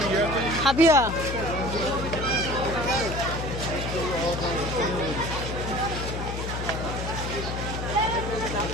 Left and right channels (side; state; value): left; noise; hum, 5 dB below the sound